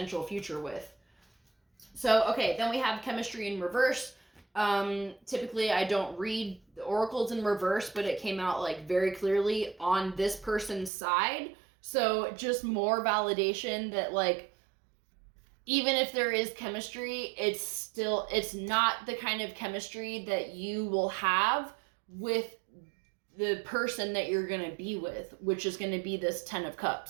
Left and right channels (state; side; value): drops out; left; at 10.9 s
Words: future with. So, okay, then we have chemistry in reverse. Typically, I don't read the oracles in reverse, but it came out like very clearly on this person's side. So just more validation that, like, even if there is chemistry, it's not the kind of chemistry that you will have with the person that you're going to be with, which is going to be this 10 of